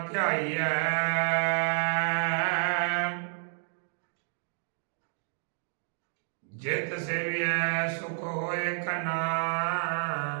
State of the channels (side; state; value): left; silent; digital silence